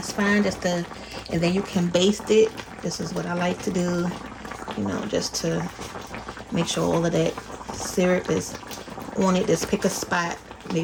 fine. Just to, and then you can baste it. This is what I like to do, you know, just to make sure all of that syrup is on it. Just pick a spot,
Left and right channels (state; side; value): identical; both; correlation 1.00